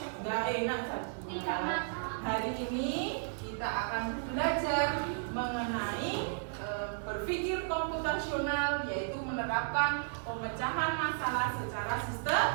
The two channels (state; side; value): silent; left; 55 dB below the other